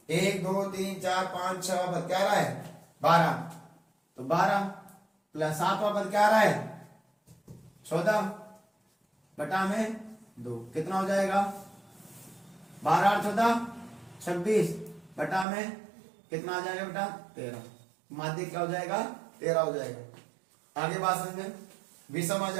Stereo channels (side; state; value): left; drops out; at 15.5 s